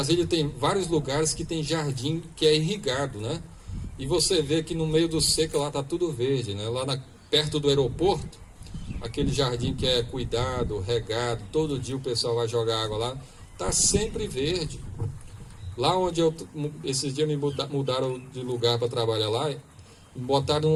tem vários lugares que tem jardim que é irrigado, né? e você vê que no meio do seco lá está tudo verde, né? Perto do aeroporto, aquele jardim que é cuidado, regado, todo dia o pessoal vai jogar água lá, está sempre verde. Lá onde esses dias me mudaram de lugar para trabalhar lá, me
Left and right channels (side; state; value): both; identical; correlation 1.00